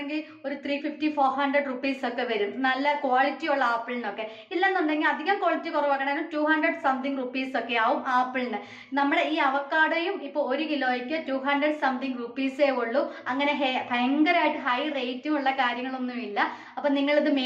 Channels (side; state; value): both; identical; correlation 1.00